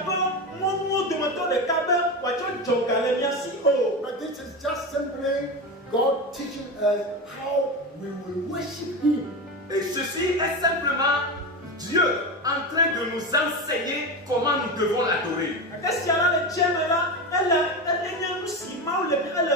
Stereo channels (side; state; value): both; normal; correlation 0.20